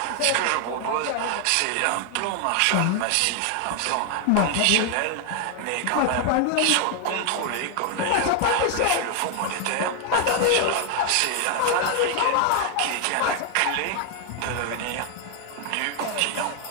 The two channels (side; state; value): both; different; correlation 0.00